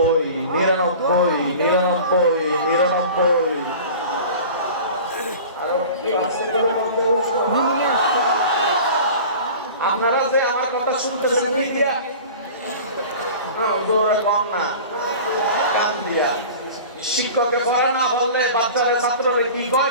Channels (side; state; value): both; inverted; correlation -0.39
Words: 99 99 99। আপনারা যে আমার কথা শুনতেছেন দিয়া কম না, কান দিয়া। শিক্ষকে পড়া না বললে বাচ্চারা ছাত্ররা কি